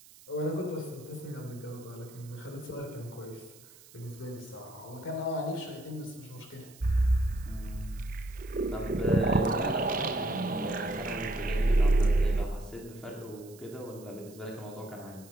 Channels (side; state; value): right; noise; hiss, 22 dB below the sound